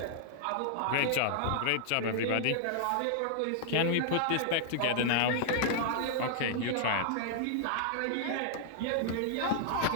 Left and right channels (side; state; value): both; different; correlation -0.01